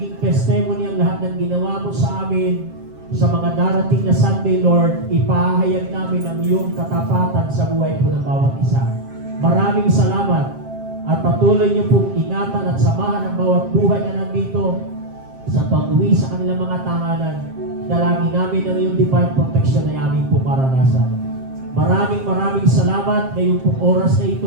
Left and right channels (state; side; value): late; left; 7.5 ms